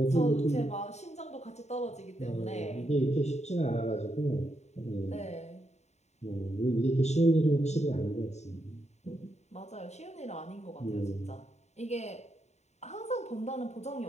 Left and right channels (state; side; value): late; right; 0.32 ms